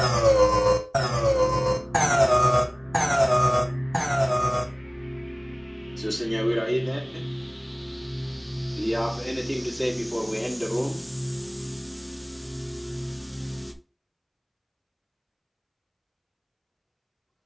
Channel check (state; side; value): identical; both; correlation 1.00